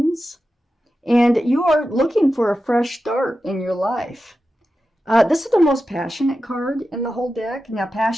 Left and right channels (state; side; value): normal; both; correlation 0.92